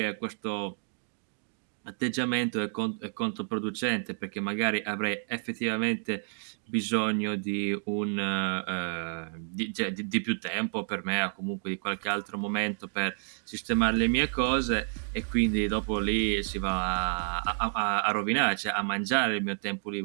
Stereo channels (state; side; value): silent; left; digital silence